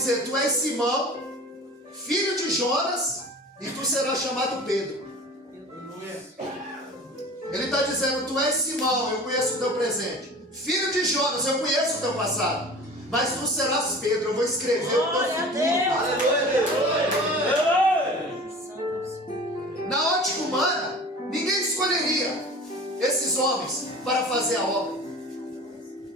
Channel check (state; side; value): normal; both; correlation 0.40